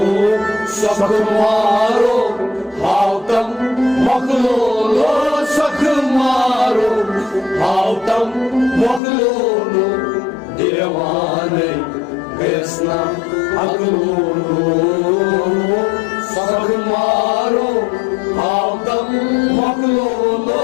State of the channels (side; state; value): right; drops out; at 9.0 s